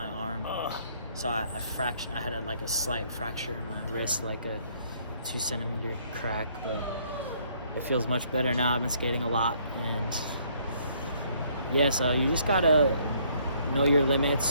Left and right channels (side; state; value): both; inverted; correlation -0.65